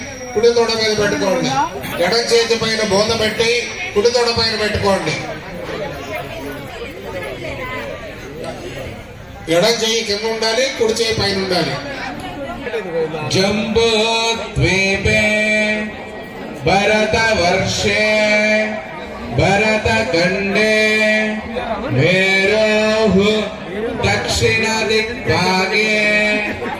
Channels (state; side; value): identical; both; correlation 1.00